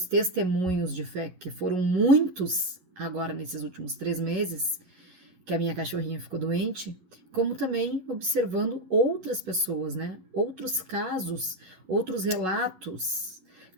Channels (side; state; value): left; late; 11 ms